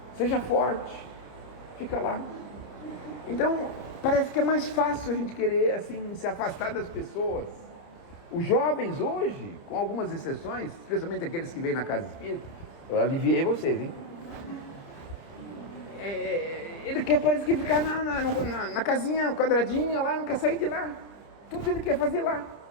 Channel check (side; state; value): right; late; 30 ms